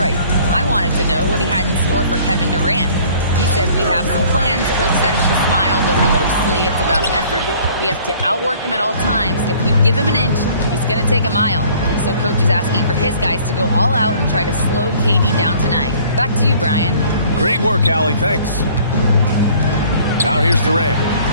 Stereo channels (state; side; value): inverted; both; correlation -0.54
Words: I wanted to know what he had in store for Kevin Durant. He said, we have some plans. Coach said with a smile, but mostly it's about effort. We have to outwork him at all times. If we give him an inch, he's going to take a mile. So coach is asking for his guys to go all out and try to slow KD down tonight. Back to you, Brian. Great work, Allie. Thanks. Now here's Durant.